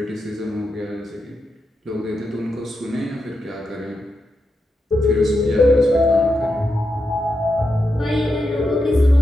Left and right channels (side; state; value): both; normal; correlation 0.86